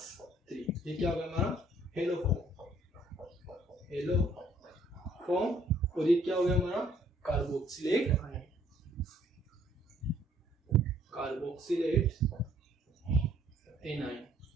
ये क्या होगा हमारा? हेलोफॉर्म। हेलोफॉर्म। और ये क्या हो गया हमारा? Carboxylate ion, carboxylate A9.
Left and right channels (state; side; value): normal; both; correlation 0.62